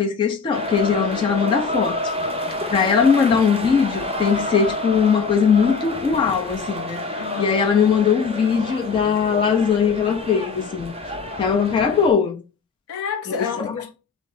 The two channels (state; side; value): quieter; right; 5.4 dB